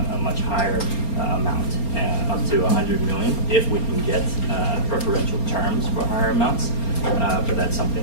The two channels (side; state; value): right; late; 4.3 ms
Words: a much higher amount, up to $100 million, if we can get preferential terms for higher amounts. But that's